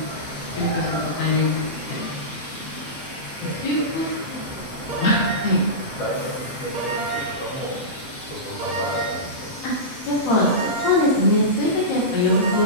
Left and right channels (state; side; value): late; right; 7.7 ms